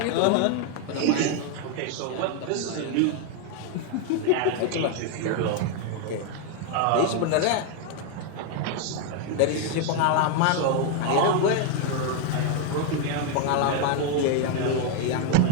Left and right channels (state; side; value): different; both; correlation 0.01